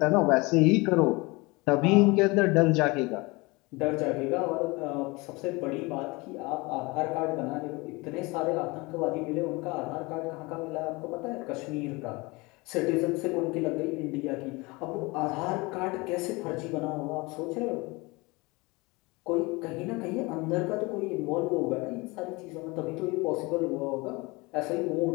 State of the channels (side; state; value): right; quieter; 24.8 dB